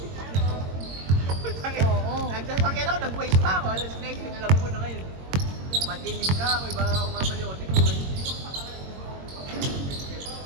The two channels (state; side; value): late; left; 22 ms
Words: Nagsasakyan ako, nag-waste pa ako. Alas next thing, alam ko na ngayon. Matilim ka ako, iba ako mamaliotin ko.